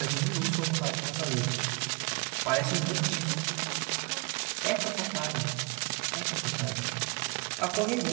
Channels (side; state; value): left; quieter; 29.5 dB